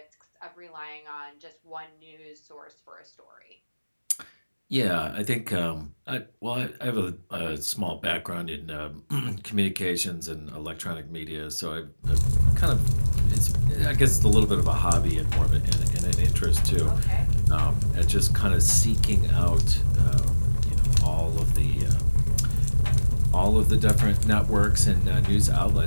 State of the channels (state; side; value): inverted; both; correlation -1.00